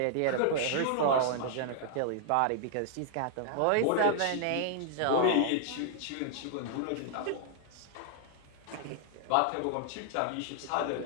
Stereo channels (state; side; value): different; both; correlation -0.01